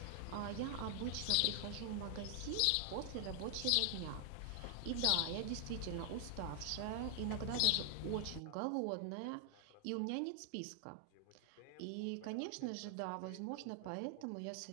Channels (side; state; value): both; different; correlation 0.00